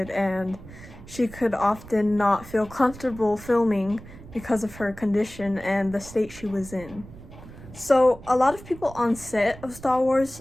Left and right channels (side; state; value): right; noise; rumble, 17 dB below the sound